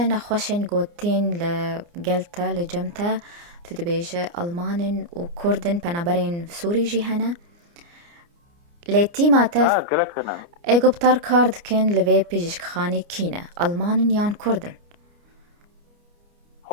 نخوشن قوتين لقلتا لجمتا تدبيجة ألمانن وكردن بنابرين سوري جيهنا ليتي ما تف قالك أنا ايجوبتر كارد كن لفي بيجيش خاني كينا ألمان يان كردن.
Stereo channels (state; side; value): late; left; 29 ms